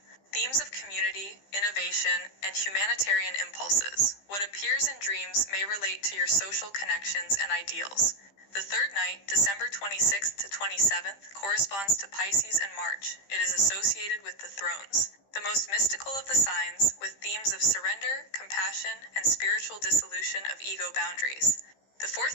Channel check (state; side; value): late; right; 15 ms